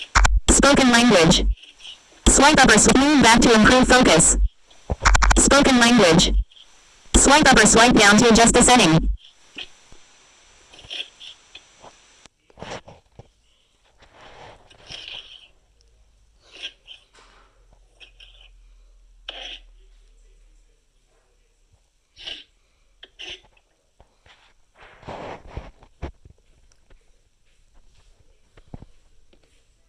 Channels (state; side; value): identical; both; correlation 1.00